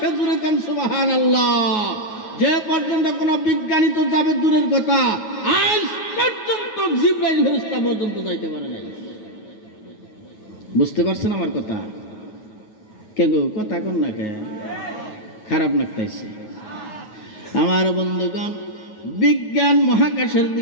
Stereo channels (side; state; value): right; late; 9.4 ms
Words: জুড়ে কান সুবহানাল্লাহ। যে পর্যন্ত কোনো বিজ্ঞানী তো যাবে দূরের কথা, আজ পর্যন্ত জিবরাইল ফেরেশতা পর্যন্ত যাইতে পারে নাই। বুঝতে পারছেন আমার কথা? কে গো, কথা কোন না কে? খারাপ লাগতেছে। আমার বন্ধুগণ, বিজ্ঞান মহাকাশের